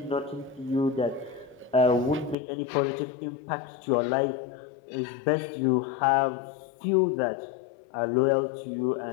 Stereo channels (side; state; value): right; drops out; at 2.4 s